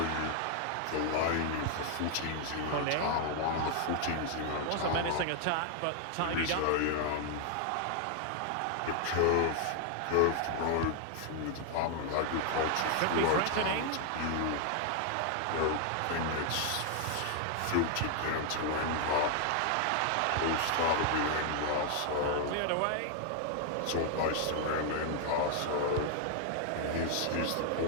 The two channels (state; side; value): different; both; correlation 0.00